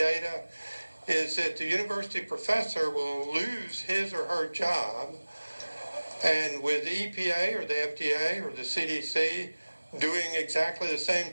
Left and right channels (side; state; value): both; inverted; correlation -1.00